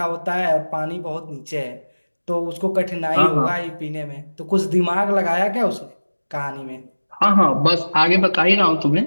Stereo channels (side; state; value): both; inverted; correlation -1.00